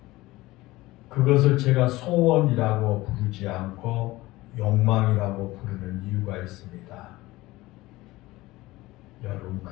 그것을 제가 소원이라고 부르지 않고 욕망이라고 부르는 이유가 있습니다. 여러분,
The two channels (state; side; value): quieter; right; 19.0 dB